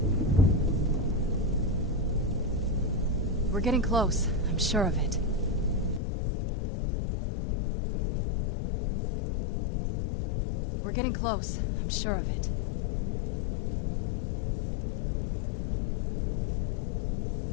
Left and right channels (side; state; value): right; drops out; at 6.0 s